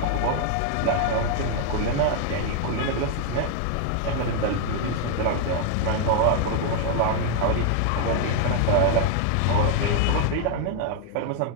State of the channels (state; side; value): different; both; correlation 0.00